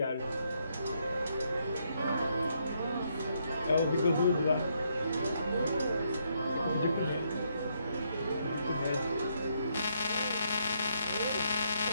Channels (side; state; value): both; inverted; correlation -0.75